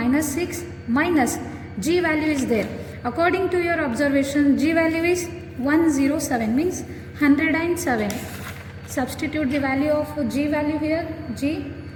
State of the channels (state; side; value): identical; both; correlation 1.00